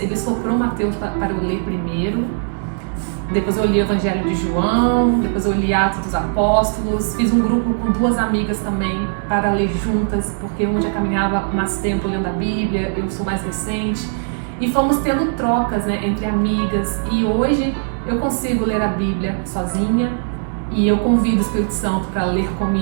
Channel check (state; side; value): silent; left; 66 dB below the other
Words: soprou Mateus para eu ler primeiro. Depois eu li o Evangelho de João, depois eu li Atos dos Apóstolos. Fiz um grupo com 2 amigas também para ler juntas, porque uma já caminhava mais tempo lendo a Bíblia, eu sou mais recente. E fomos tendo trocas, né, entre amigas. E hoje eu consigo ler a Bíblia sozinha e eu convido o Espírito Santo para ler